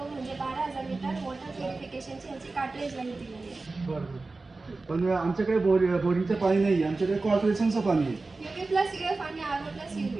म्हणजे 12,000 लिटर वॉटर प्युरिफिकेशनची ह्याची कार्ट्रेज लाईफ दिलेली आहे. बरं. पण आमच्याकडे बोरिंगचं पाणी नाही आहे, आमच्याकडे कॉर्पोरेशनचं पाणी आहे. UV प्लस UF आणि RO प्लस UV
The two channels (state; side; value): quieter; left; 3.5 dB